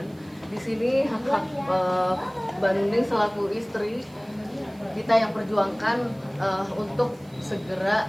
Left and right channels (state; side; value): noise; right; hiss, 29 dB below the sound